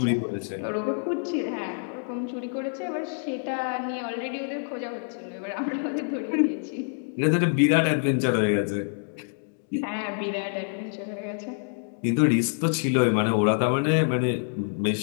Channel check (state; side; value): silent; right; 60 dB below the other